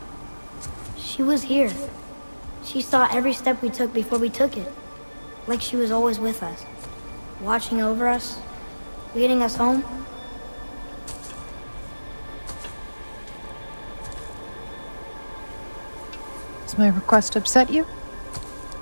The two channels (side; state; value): both; inverted; correlation -1.00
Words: She was here. She saw every step we took before we took it. Like she was always with us. Watching over us. Leading us home. Does my request upset you?